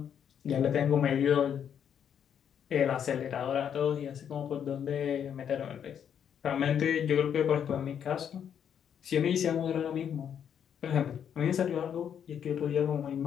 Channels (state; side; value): quieter; right; 8.5 dB